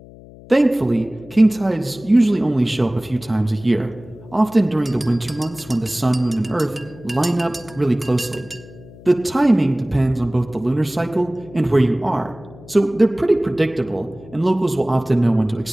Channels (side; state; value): left; noise; hum, 20 dB below the sound